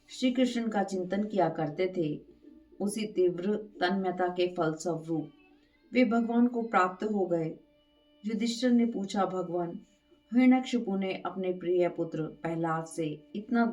श्री कृष्ण का चिंतन किया करते थे। उसी तीव्र तन्मयता के फलस्वरूप वे भगवान को प्राप्त हो गए। युधिष्ठिर ने पूछा, भगवान हिरण्यकशिपु ने अपने प्रिय पुत्र प्रहलाद से इतना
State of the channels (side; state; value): both; identical; correlation 1.00